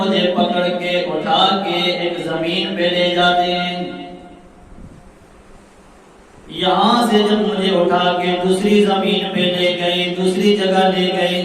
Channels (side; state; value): both; identical; correlation 1.00